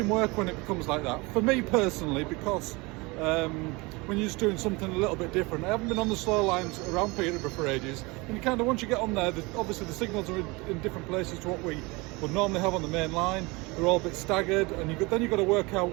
work when it becomes like that. For me personally, because when you're just doing something a little bit different. I haven't been on the slow lines around Peterborough for ages, and you kind of, once you get on there, obviously the signals are in different places to what we would normally have on the main line. They're all a bit staggered, and then you've got to work out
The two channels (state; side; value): quieter; left; 25.2 dB